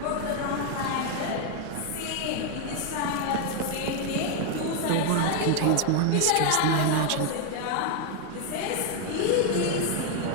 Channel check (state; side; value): different; both; correlation 0.00